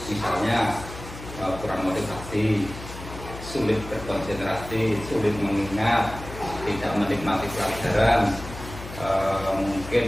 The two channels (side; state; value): left; noise; hum, 12 dB below the sound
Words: misalnya kurang motivasi, sulit berkonsentrasi, sulit mengingat, tidak menikmati pelajaran,